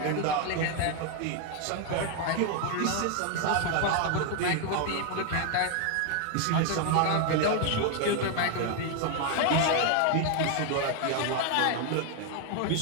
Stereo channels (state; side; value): different; both; correlation 0.01